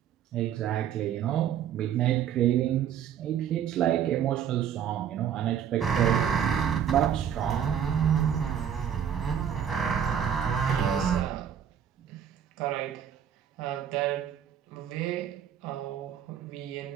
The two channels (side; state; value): left; quieter; 9.0 dB